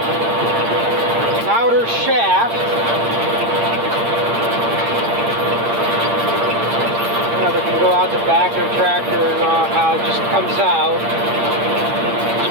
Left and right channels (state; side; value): late; left; 8.7 ms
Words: outer shaft. They can go out the back of the tractor and how it just comes out. So